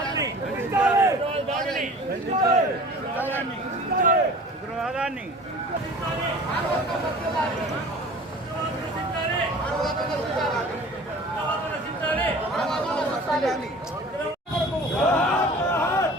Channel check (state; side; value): normal; both; correlation 0.43